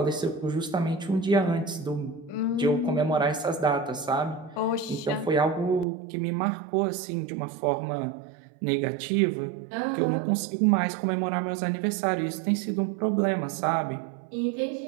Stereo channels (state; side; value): drops out; left; at 5.9 s